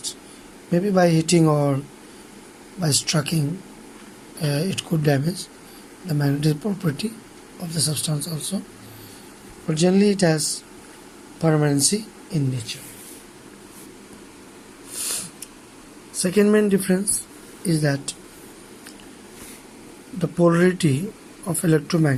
Maybe by hitting or by striking, it could damage the magnetic property of the substance also. But generally it has permanency in nature. Second main difference is that the polarity of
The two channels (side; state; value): both; identical; correlation 1.00